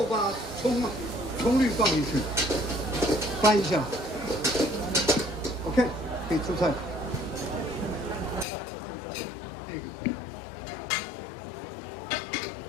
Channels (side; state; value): right; drops out; at 8.5 s